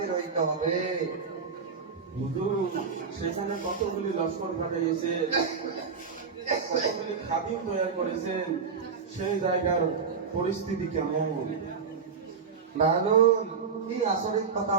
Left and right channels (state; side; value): quieter; left; 5.7 dB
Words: হইতে হবে। হুজুর, সেখানে কতগুলি লস্কর পাঠিয়েছেন, কতগুলি খাদিম তৈরি করেছেন, সেই জায়গার পরিস্থিতি কেমন? বাহাদুর, কি আচরিত কথা